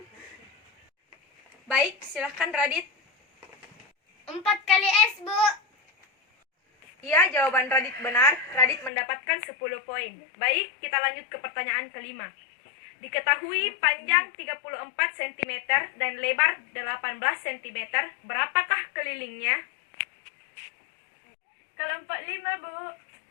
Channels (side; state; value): right; drops out; at 8.9 s